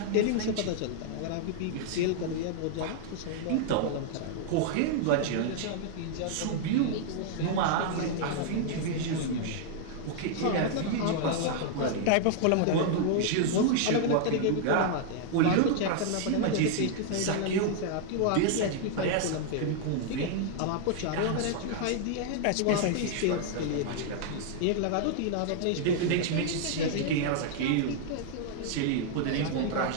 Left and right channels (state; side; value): different; both; correlation 0.00